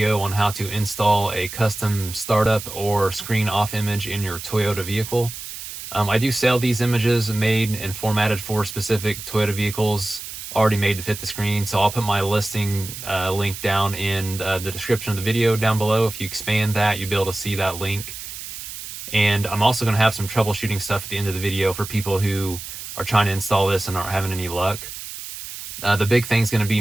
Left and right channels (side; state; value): right; noise; hiss, 10 dB below the sound